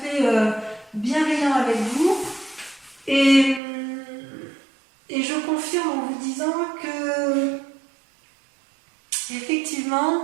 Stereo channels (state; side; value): drops out; left; at 3.6 s